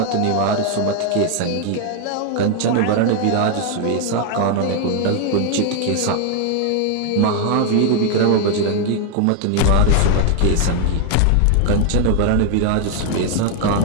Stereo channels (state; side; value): different; both; correlation 0.00